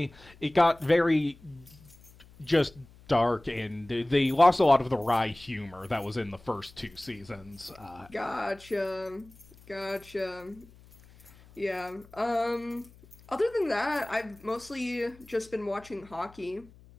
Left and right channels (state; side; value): noise; left; hum, 24 dB below the sound